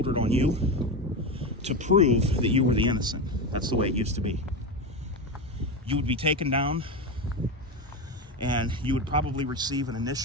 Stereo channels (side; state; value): both; normal; correlation 0.17